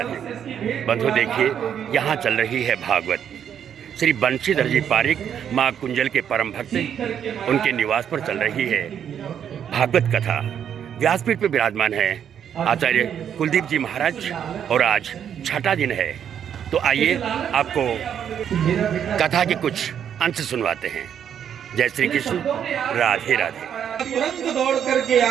बंधुओं, देखिए यहाँ चल रही है भागवत। श्री बंशीधर जी पारिक माँ कुंजल के परम भक्त उनके निवास पर चल रही है भागवत कथा। व्यासपीठ पर विराजमान है आचार्य कुलदीप जी महाराज और आज छठा दिन है। तो आइए आपको कथा के कुछ अंश सुनवाते हैं। जय श्री कृष्ण, राधे राधे। तुरंत दौड़ करके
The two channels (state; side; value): quieter; left; 8.8 dB